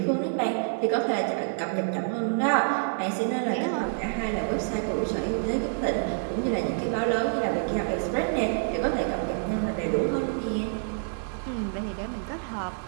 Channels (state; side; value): silent; left; digital silence